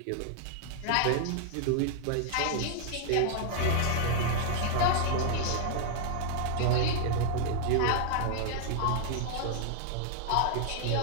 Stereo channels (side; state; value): both; different; correlation -0.01